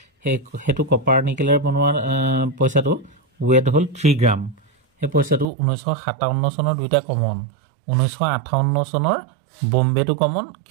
সেইটো কপাৰ নিকেলৰ বনোৱা পইচাটো ৱেট হ'ল 3 গ্ৰাম। সেই পইচাটো 1957 চনৰ দুইটা কমন, 1958 চনৰ বম্বেটো কমন,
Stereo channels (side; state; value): left; drops out; at 5.5 s